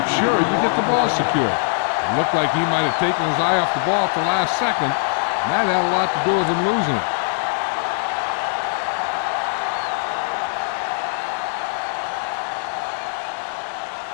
sure you get the ball secured. It looked like he might have taken his eye off the ball at the last second, and that had a lot to do with him losing it.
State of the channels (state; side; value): silent; right; digital silence